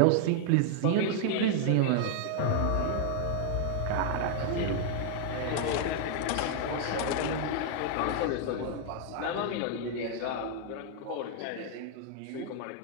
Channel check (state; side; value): different; both; correlation 0.00